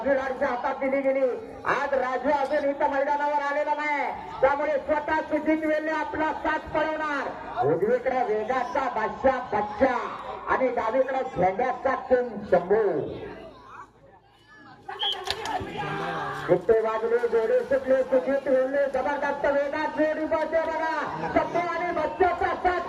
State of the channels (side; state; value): both; identical; correlation 1.00